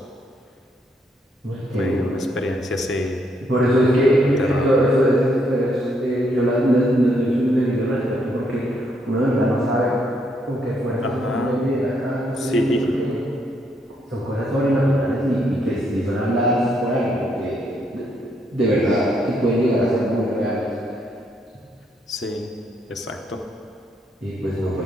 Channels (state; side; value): normal; both; correlation 0.74